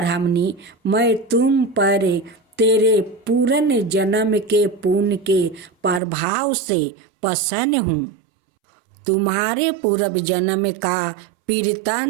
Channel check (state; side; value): drops out; left; at 6.0 s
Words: मैं तुम पर तेरे पूर्ण जन्म के पुण्य के प्रभाव से प्रसन्न हूँ। तुम्हारे पूर्व जन्म का